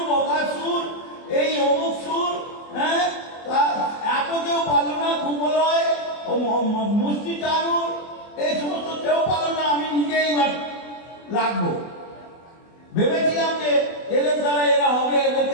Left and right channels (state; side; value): late; right; 24 ms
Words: বগাসুর, এই অমুক সুর, হ্যাঁ, এত কেউ পারল না। কুমলয়, মুষ্টি চানুর, এই সমস্ত কেউ পারল না। আমি নিজেই লাগবো। ভেবেছিলাম যে এদের দ্বারা এরা হবে,